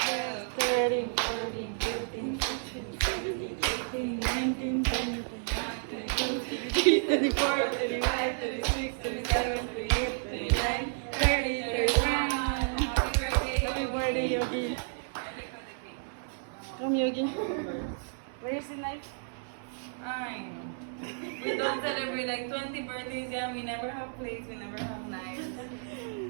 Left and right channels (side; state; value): left; silent; 57 dB below the other